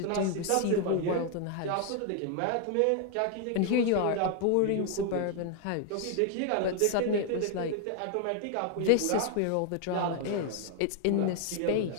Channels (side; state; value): both; different; correlation 0.00